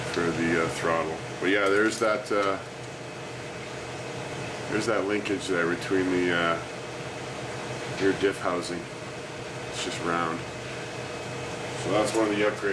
the throttle. But yeah, there's that linkage there between the rear diff housing. It's just round. So that's one of the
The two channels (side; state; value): both; identical; correlation 1.00